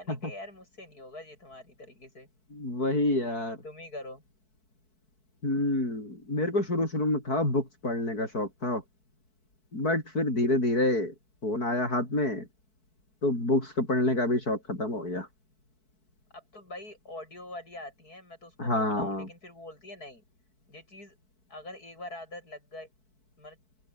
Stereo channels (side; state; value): right; late; 4.6 ms